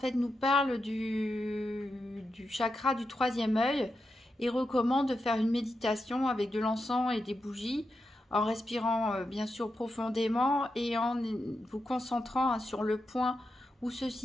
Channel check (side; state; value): both; normal; correlation 0.88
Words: nous parle du chakra du troisième œil et recommande de faire une méditation avec de l'encens et des bougies en respirant bien sûr profondément et en vous concentrant sur le point où se